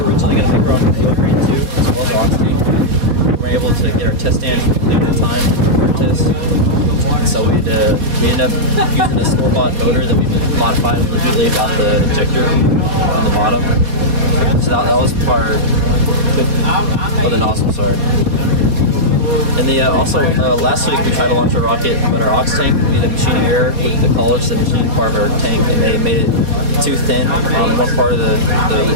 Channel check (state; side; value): late; left; 4.2 ms